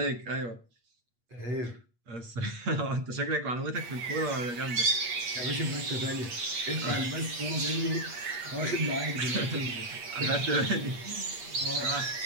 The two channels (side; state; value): left; late; 8.4 ms